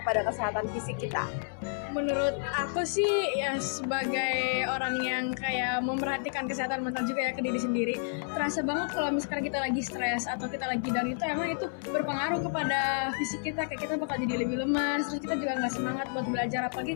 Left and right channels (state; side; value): silent; right; 58 dB below the other